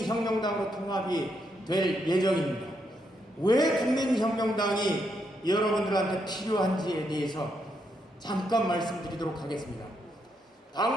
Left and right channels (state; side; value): normal; both; correlation 0.78